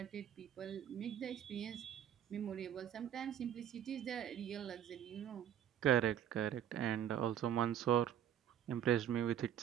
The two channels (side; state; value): left; quieter; 10.2 dB